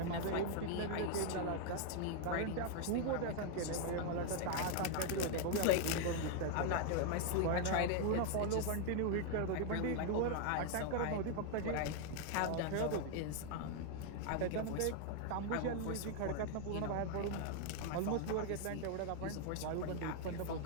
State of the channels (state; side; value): different; both; correlation 0.00